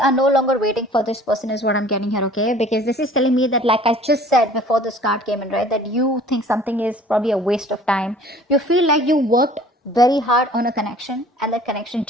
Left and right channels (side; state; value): both; normal; correlation 0.50